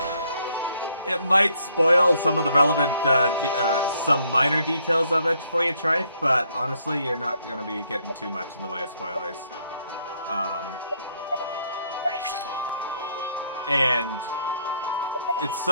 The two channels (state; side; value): inverted; both; correlation -0.70